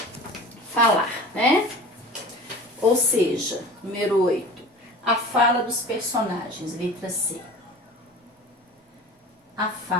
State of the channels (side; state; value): both; normal; correlation 0.39